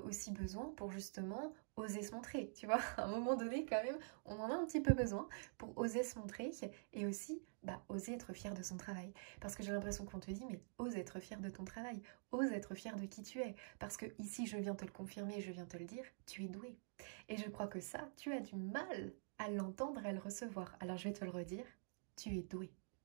besoin pour justement oser se montrer, tu vois. À un moment donné, quand même, on en a un petit peu besoin pour oser se montrer et aussi oser être fier de son travail. Parce que j'ai l'impression qu'on te dit, mais ose être fier de ton travail, ose être fier de qui tu es. Parce que ici, je viens te le confirmer, je viens te le dire, tu es doué. Et je crois que ça, tu as du mal à l'entendre, à le recevoir. Alors je vais te le redire, tu es doué.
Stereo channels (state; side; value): silent; left; digital silence